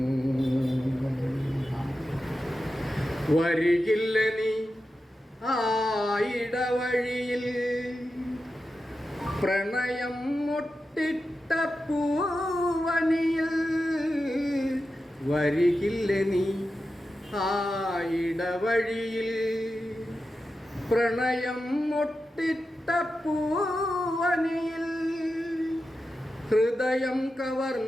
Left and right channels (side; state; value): both; normal; correlation 0.91